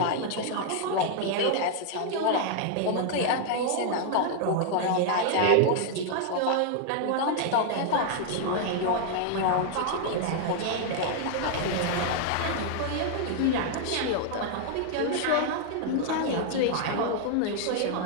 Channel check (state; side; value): different; both; correlation 0.00